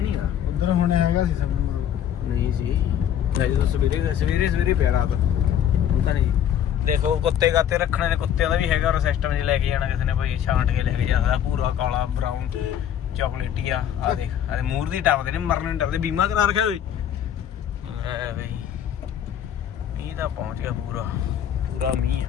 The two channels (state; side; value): quieter; right; 9.8 dB